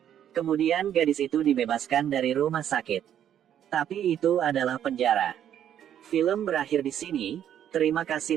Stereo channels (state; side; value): quieter; left; 10.1 dB